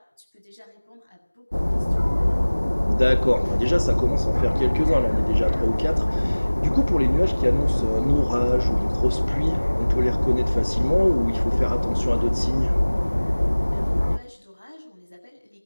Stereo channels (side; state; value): both; inverted; correlation -1.00